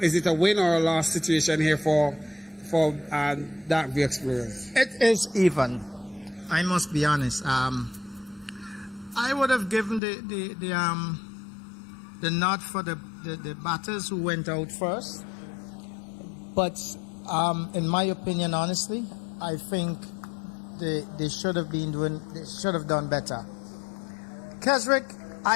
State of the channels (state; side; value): drops out; right; at 10.0 s